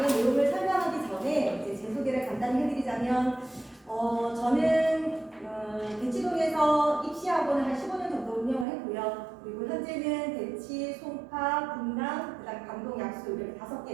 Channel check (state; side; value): drops out; left; at 8.7 s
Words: 내용을 설명하기 전에 이제 제 소개를 간단히 해드리자면, 저는 대치동에서 입시학원을 한 15년 정도 운영을 했고요. 그리고 현재는 대치, 송파, 분당, 그다음 강동, 약수 이렇게